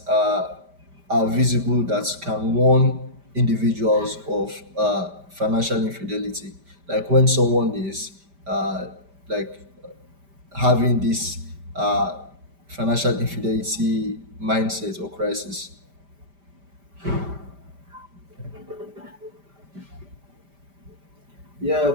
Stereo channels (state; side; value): late; left; 5.1 ms